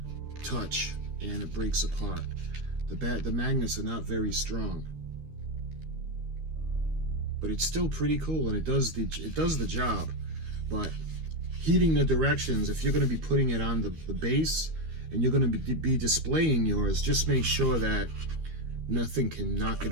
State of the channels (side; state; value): left; late; 13 ms